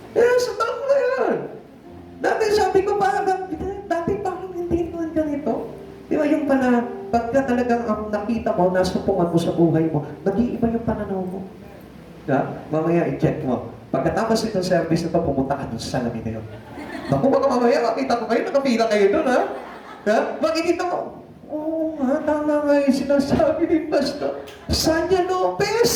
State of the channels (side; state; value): both; identical; correlation 1.00